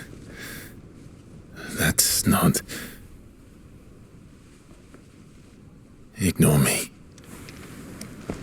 That's not... Ignore me.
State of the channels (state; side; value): identical; both; correlation 1.00